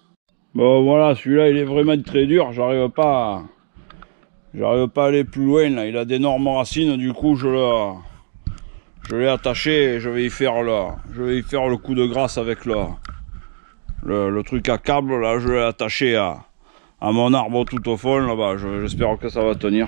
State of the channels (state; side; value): silent; left; digital silence